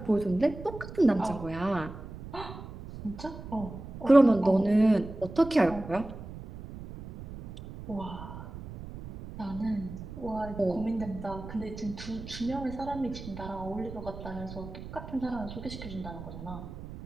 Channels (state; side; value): noise; right; rumble, 12 dB below the sound